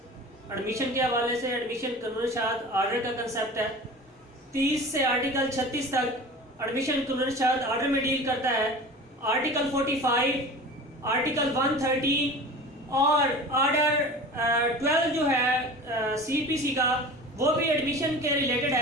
एडमिशन के हवाले से। एडमिशन कानून शाद आर्डर का कंसेप्ट है। 30 से आर्टिकल 36 तक एडमिशन कानून शाद आर्डर में डील करता है। आर्टिकल 45, आर्टिकल 113 और आर्डर 12 जो है CPC का, वो भी एडमिशन के रिलेटेड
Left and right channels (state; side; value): normal; both; correlation 0.37